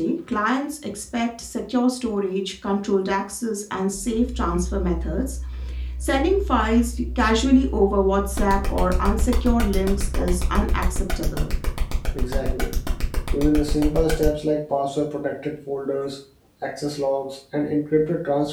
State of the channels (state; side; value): identical; both; correlation 1.00